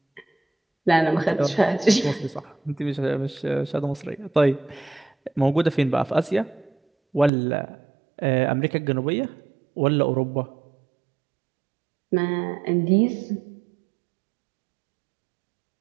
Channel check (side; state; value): left; drops out; at 7.3 s